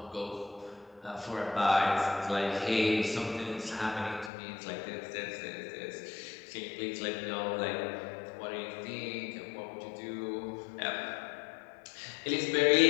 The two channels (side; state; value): right; drops out; at 4.3 s